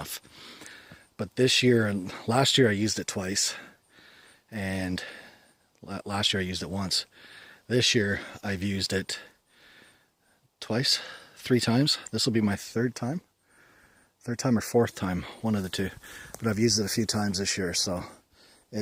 But this year and last year I used it twice, and last year I used it once. This year I've used it twice, 3 times. This will be my third time or 4th time, one of the two. But I've used it a few times this year, so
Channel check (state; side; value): identical; both; correlation 1.00